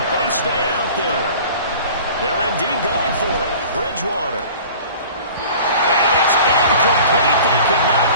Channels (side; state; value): both; inverted; correlation -0.44